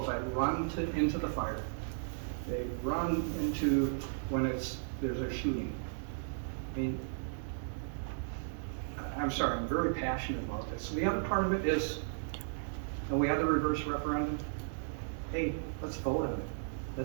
that run into the fire. They run into when there's a shooting. I mean, I'm sorry, I'm very passionate about this. So the other part of it is, we had the reverse referendum. Hey, let's vote on it.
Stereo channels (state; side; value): silent; left; digital silence